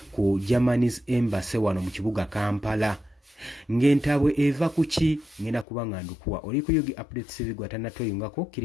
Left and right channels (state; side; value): drops out; right; at 5.7 s